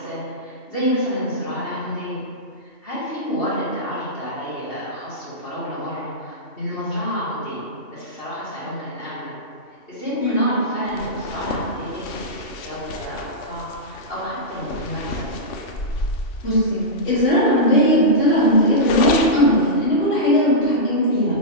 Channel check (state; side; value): late; right; 2.7 ms